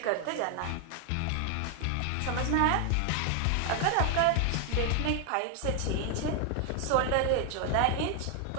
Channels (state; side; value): different; both; correlation 0.00